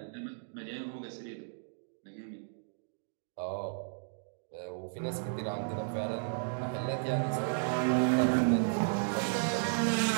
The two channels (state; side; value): silent; left; digital silence